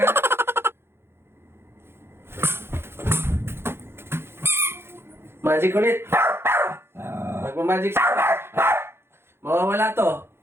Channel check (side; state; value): left; late; 0.12 ms